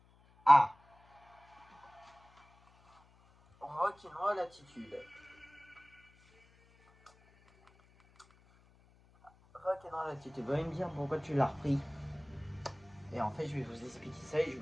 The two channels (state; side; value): noise; left; hum, 29 dB below the sound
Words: Ah. Rock'n'roll attitude. Rock'n'roll attitude. Vous allez me dire pourquoi tu l'as repris. Et en fait, je vais vous expliquer ça et je vais